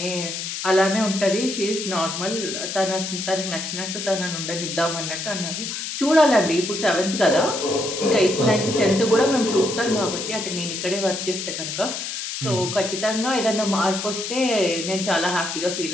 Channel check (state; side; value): noise; left; hiss, 5 dB below the sound